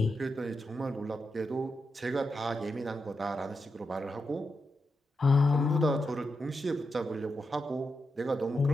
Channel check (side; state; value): both; normal; correlation 0.86